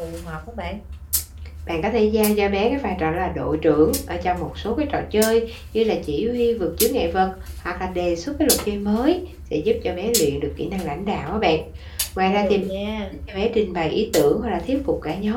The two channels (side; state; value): both; identical; correlation 1.00